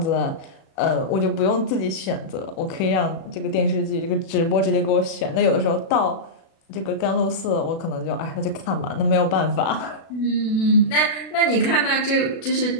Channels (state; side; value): late; right; 36 ms